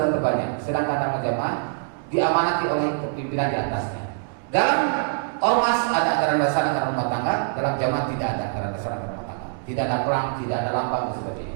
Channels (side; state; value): left; silent; digital silence